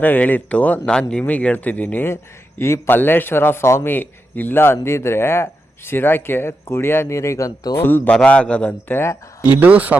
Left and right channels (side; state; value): both; normal; correlation 0.87